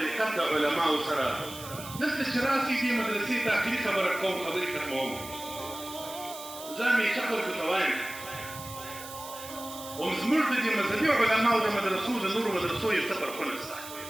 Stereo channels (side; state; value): right; noise; hiss, 13 dB below the sound